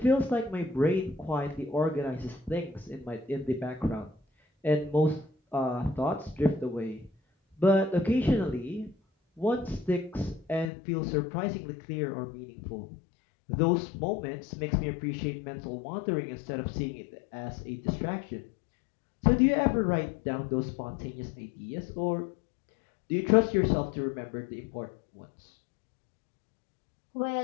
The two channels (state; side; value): drops out; right; at 10.7 s